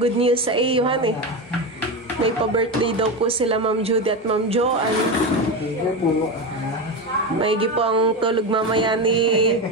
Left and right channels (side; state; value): both; normal; correlation 0.18